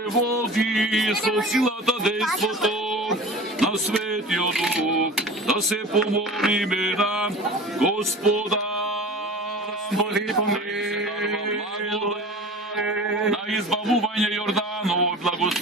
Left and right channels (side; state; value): both; normal; correlation 0.37